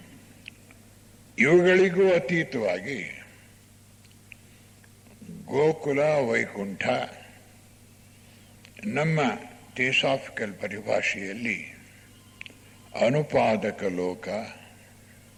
ಇವುಗಳಿಗೂ ಅತೀತವಾಗಿ ಗೋಕುಲ, ವೈಕುಂಠ, ನಮ್ಮ ಥಿಯೋಸಾಫಿಕಲ್ ಪರಿಭಾಷೆಯಲ್ಲಿ ಅನುಪಾದಕ ಲೋಕ,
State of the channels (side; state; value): both; identical; correlation 1.00